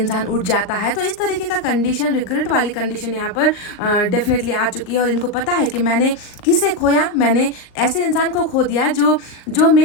उठ जाता है। तो इस तरीके का कंडीशन, रिग्रेट वाली कंडीशन यहाँ पर डेफिनेटली आ चुकी है और इनको पता है कि मैंने किसे खोया, मैंने ऐसे इंसान को खो दिया जो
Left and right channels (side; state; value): right; late; 38 ms